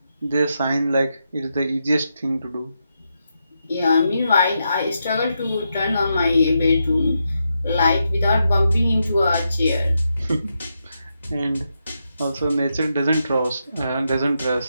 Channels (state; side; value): inverted; both; correlation -0.84